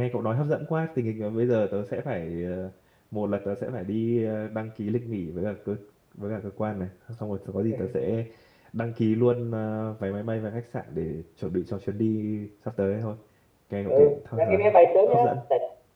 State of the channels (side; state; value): both; identical; correlation 1.00